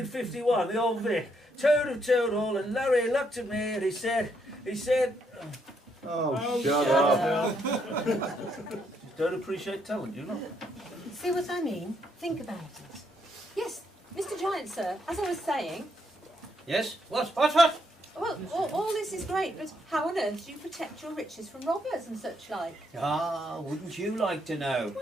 the old Vic. Toad of Toad Hall, and Larry looked at me and he said, Oh, shut up. you don't appreciate talent, you know? See what I mean? Think about it. Yes, Mr. Giant, sir, as I was saying, Yes? What? well, all this is great, but how on earth do you protect your riches from robbers and such like? Ah, wouldn't you like to know?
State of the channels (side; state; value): both; normal; correlation 0.74